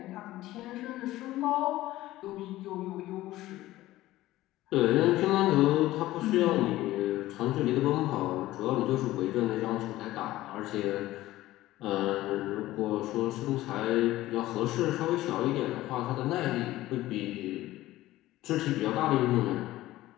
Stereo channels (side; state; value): right; quieter; 16.2 dB